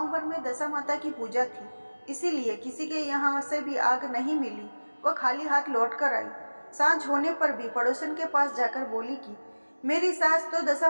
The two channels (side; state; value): both; inverted; correlation -1.00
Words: भर में दशा माता की पूजा थी, इसीलिए किसी के यहाँ से भी आग नहीं मिली। वह खाली हाथ लौट कर आई। सांझ होने पर भी पड़ोसन के पास जाकर बोली कि मेरी सास तो दशा